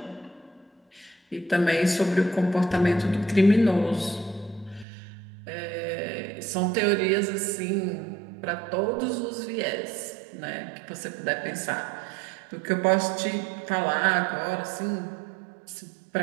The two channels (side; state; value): left; drops out; at 4.9 s